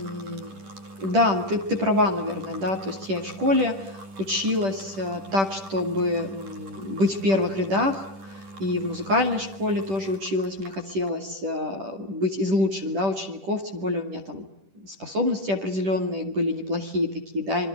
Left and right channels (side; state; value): left; late; 10 ms